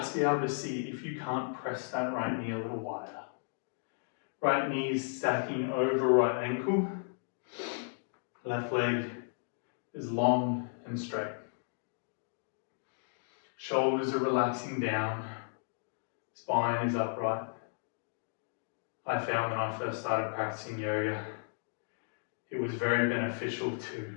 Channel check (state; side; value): silent; right; digital silence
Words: be able to see if you can't press that right knee a little wider. Right knee is stacking over right ankle. Left leg is long and straight. Shoulders are relaxing down. Spine is upright. I found when I first started practicing yoga, it was very beneficial to